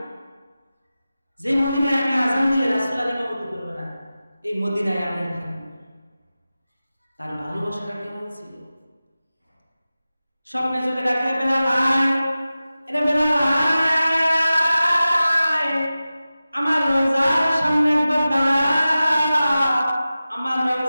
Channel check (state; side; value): inverted; both; correlation -0.95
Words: যে মদিনায় আমি আযান দিলে রাসূল ইমামতি করবে না, এই মদিনায় আমি থাকব। তার ভালোবাসাটা কেমন ছিল? স্বপ্নে যদি ডাকে বেলাল আয়, এটা বেলাল আয়, আমার রওজার সামনে একবার দাঁড়া, আমার